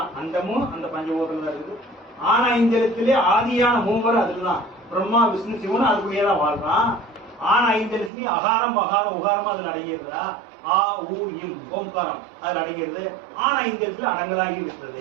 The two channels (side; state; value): left; drops out; at 8.1 s